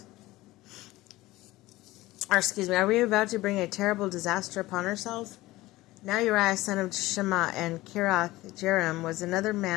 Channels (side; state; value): right; quieter; 18.3 dB